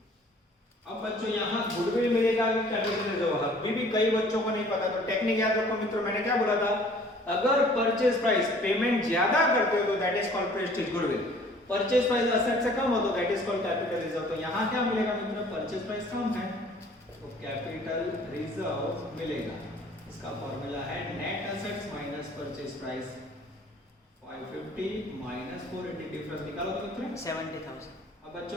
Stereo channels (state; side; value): normal; both; correlation 0.53